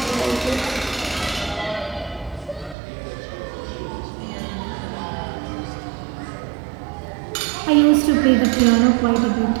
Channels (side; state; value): left; drops out; at 2.8 s